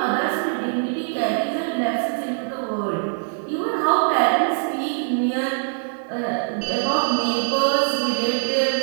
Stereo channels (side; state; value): left; silent; digital silence